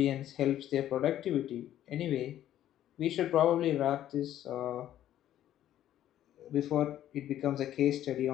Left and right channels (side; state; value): right; quieter; 12.1 dB